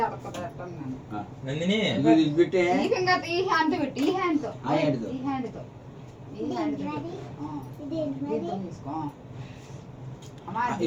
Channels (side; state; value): both; identical; correlation 1.00